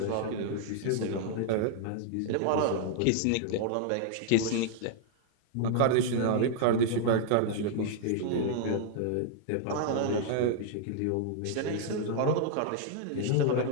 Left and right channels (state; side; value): different; both; correlation -0.01